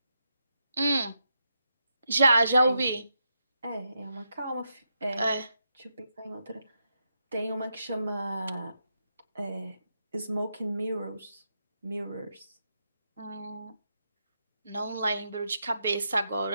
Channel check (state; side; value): inverted; both; correlation -0.84